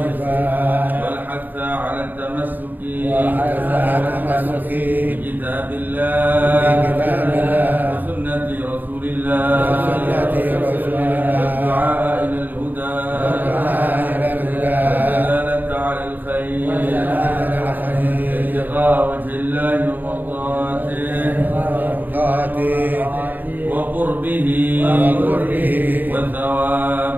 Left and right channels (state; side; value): late; left; 0.088 ms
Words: Wal hatha 'ala at-tamassuki. Wal hatha 'ala at-tamassuki. Bi kitabillah. Bi kitabillah. Wa sunnati Rasulillah. وجه الله ومرضاته وقربه